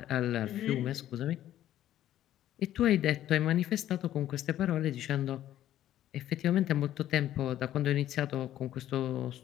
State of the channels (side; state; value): right; quieter; 12.5 dB